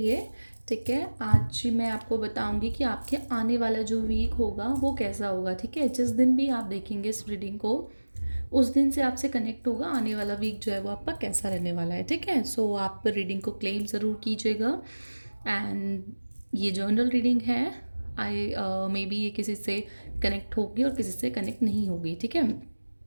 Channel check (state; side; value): inverted; both; correlation -1.00